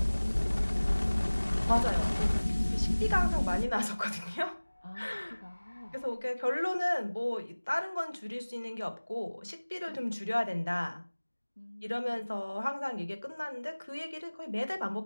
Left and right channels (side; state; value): both; inverted; correlation -1.00